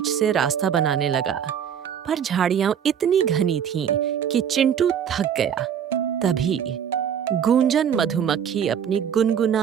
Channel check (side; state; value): left; quieter; 8.5 dB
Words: से रास्ता बनाने लगा। पर झाड़ियां इतनी घनी थीं कि चिंटू थक गया। तभी गूंजन मधुमक्खी अपनी